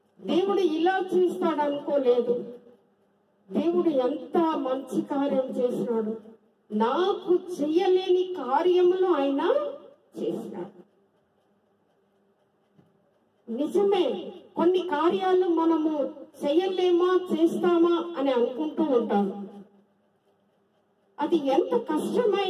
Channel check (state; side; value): identical; both; correlation 1.00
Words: దేవుడు ఇలా చేస్తాడు అనుకోలేదు. దేవుడు ఎంత మంచి కార్యం చేసినాడు, నాకు చెయ్యలేని కార్యములు ఆయన చేసినాడు. నిజమే, కొన్ని కార్యాలు మనము చెయ్యలేమా చేస్తామా అని అనుకుంటూ ఉంటాము. అది ఎంత